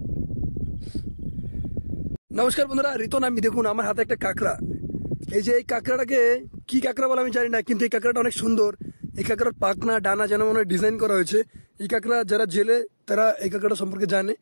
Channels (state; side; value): inverted; both; correlation -1.00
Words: নমস্কার বন্ধুরা, রিতন আমি। দেখুন আমার হাতে একটা কাঁকড়া। এই যে এই কাঁকড়াটাকে কি কাঁকড়া বলে আমি জানি না, কিন্তু এই কাঁকড়াটা অনেক সুন্দর। এই কাঁকড়ার পাখনা ডানা যেন মনে হয় ডিজাইন করা হয়েছে। এই কাঁকড়া যারা জেলে তারা এই কাঁকড়াটা সম্পর্কে জানে।